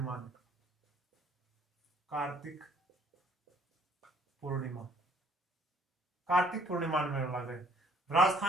में। कार्तिक पूर्णिमा। कार्तिक पूर्णिमा में मेला लगे।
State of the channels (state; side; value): normal; both; correlation 0.60